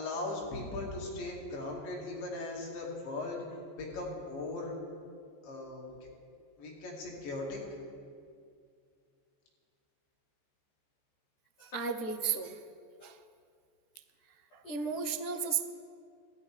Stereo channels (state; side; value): late; right; 13 ms